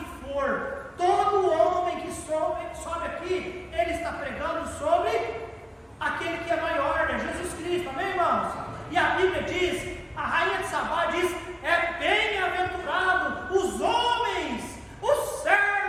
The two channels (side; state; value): both; identical; correlation 1.00